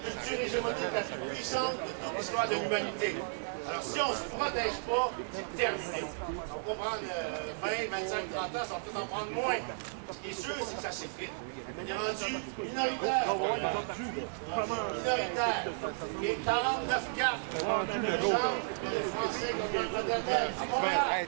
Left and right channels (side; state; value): left; silent; digital silence